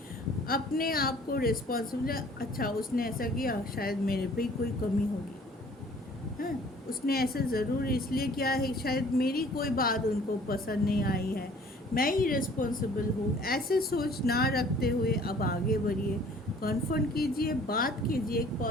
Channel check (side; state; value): both; normal; correlation 0.53